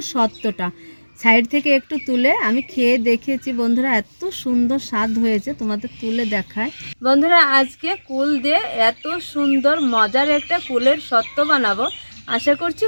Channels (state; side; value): inverted; both; correlation -1.00